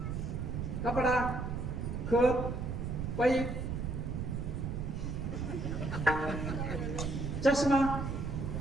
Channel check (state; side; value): noise; right; rumble, 3 dB below the sound